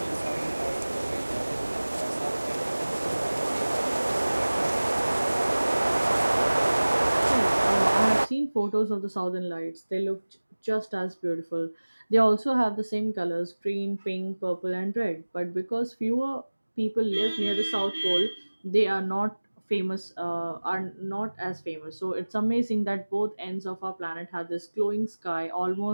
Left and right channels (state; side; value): inverted; both; correlation -1.00